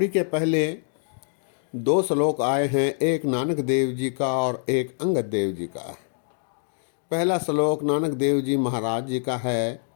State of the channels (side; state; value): right; silent; digital silence